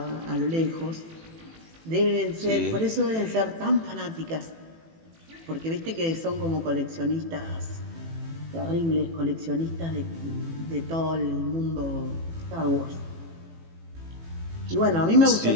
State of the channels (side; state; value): left; late; 18 ms